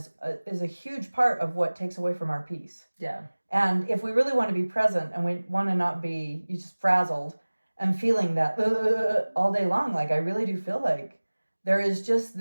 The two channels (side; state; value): both; inverted; correlation -1.00